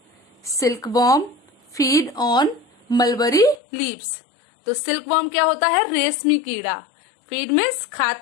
Silkworm feed on mulberry leaves. तो सिल्कवॉर्म क्या होता है? रेशमी कीड़ा। फीड मीन्स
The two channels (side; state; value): right; drops out; at 3.6 s